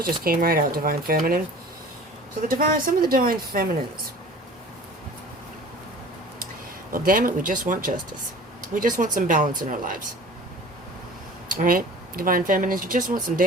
just came right out, divine feminine. So some of the divine feminines. Well, damn it, we just want justice. We just want some balance in our lives. All right? Divine feminines, you just want some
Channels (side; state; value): both; normal; correlation 0.43